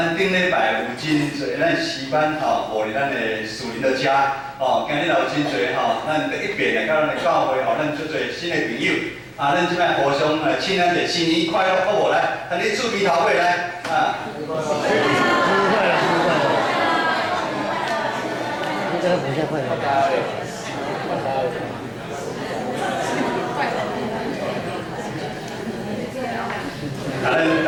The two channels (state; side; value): identical; both; correlation 1.00